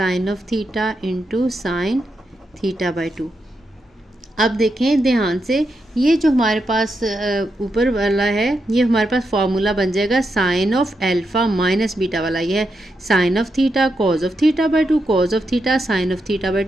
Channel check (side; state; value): both; normal; correlation 0.84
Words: of theta into sine theta by 2। अब देखें ध्यान से, ये जो हमारे पास ऊपर वाला है ये हमारे पास फार्मूला बन जाएगा sine of alpha minus beta वाला। ये है sine of theta cos of theta by 2, cos of theta sine of theta by